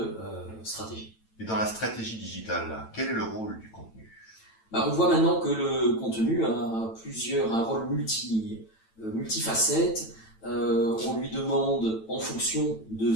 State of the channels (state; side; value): late; right; 9.0 ms